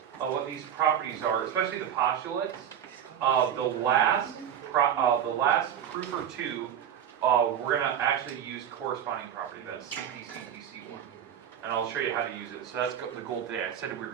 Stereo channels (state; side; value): quieter; left; 9.4 dB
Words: of what these properties are, especially the postulates. The last proof or two, we're going to actually use corresponding property, that's cpctc one. And I'll show you how to use it. So that's the goal today. I said we were